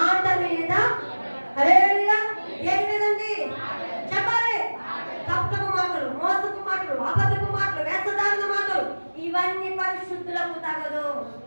మీద. హల్లెలూయా. ఏం లేదండి చెప్పాలి. తప్పకు మాటలు, మోసపు మాటలు, అబద్ధపు మాటలు, వేషధారణ మాటలు ఇవన్నీ పరిశుద్ధులకు తగదు.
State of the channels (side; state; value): both; inverted; correlation -1.00